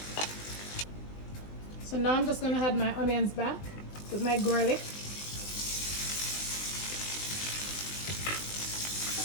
So now I'm just going to add my onions back with my garlic.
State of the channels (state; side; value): late; right; 20 ms